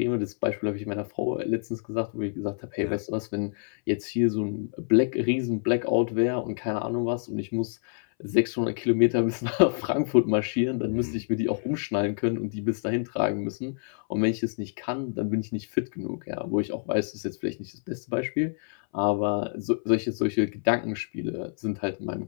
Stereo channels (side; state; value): right; silent; 60 dB below the other